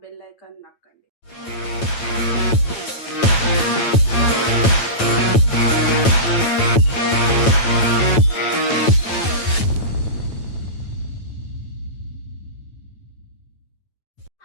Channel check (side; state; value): right; late; 9.0 ms